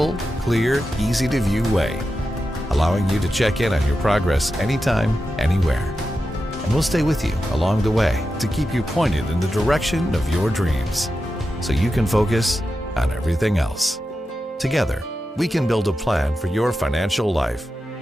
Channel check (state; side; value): normal; both; correlation 0.90